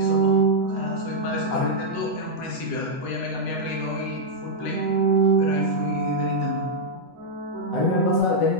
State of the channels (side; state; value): right; late; 8.0 ms